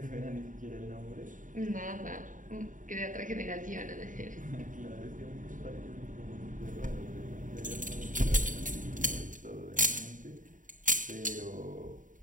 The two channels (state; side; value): late; left; 0.38 ms